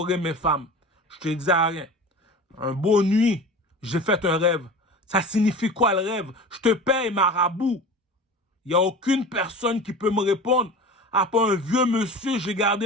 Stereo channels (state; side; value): normal; both; correlation 0.35